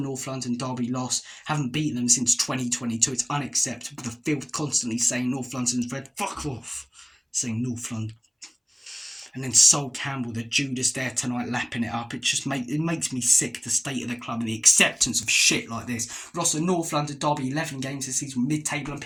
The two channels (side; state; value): both; identical; correlation 1.00